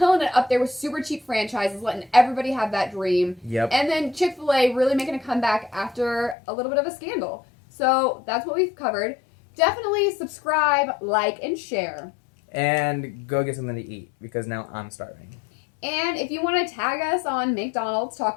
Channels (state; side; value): drops out; right; at 6.4 s